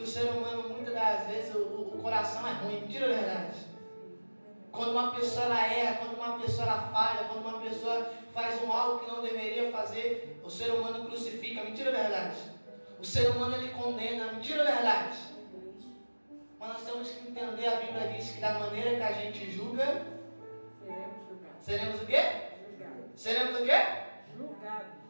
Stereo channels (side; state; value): both; inverted; correlation -1.00